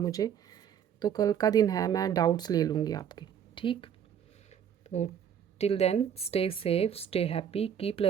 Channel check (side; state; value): left; quieter; 8.7 dB